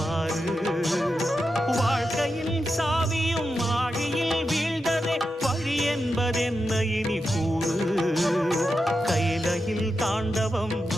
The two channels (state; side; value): normal; both; correlation 0.88